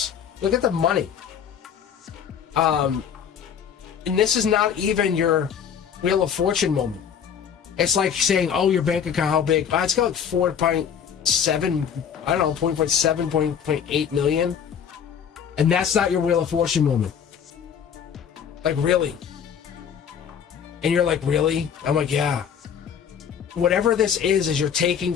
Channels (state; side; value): quieter; right; 7.9 dB